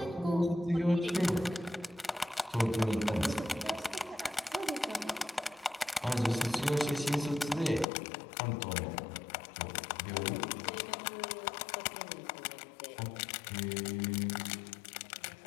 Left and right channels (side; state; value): right; drops out; at 7.9 s